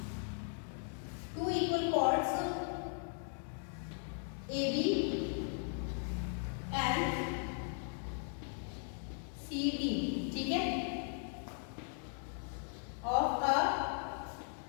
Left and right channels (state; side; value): silent; right; 52 dB below the other